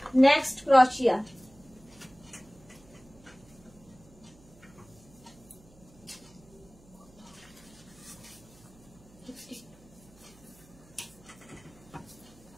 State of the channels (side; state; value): right; noise; hum, 25 dB below the sound